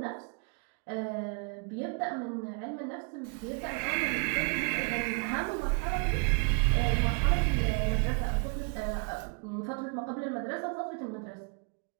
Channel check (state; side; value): quieter; left; 37.6 dB